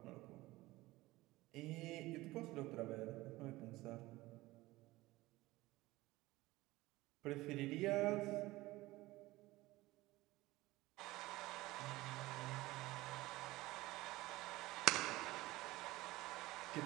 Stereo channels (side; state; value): left; quieter; 19.0 dB